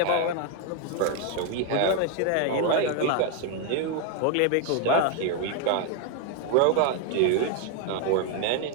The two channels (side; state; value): both; different; correlation 0.01